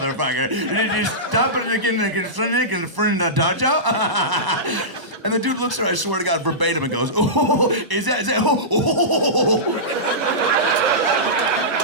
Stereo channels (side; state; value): left; late; 1.0 ms